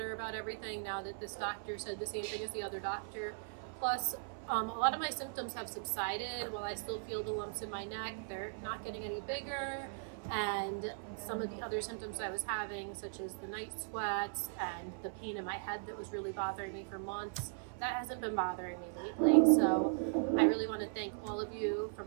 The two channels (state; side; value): silent; left; 52 dB below the other